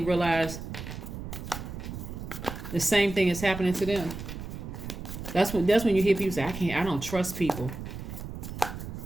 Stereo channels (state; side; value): noise; right; rumble, 8 dB below the sound